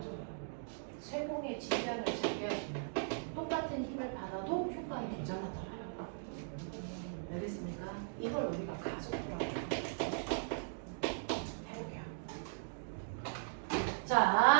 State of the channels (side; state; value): left; silent; digital silence